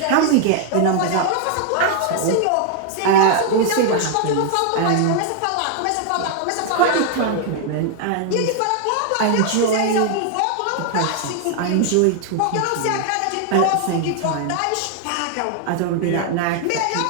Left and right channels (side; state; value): both; different; correlation 0.00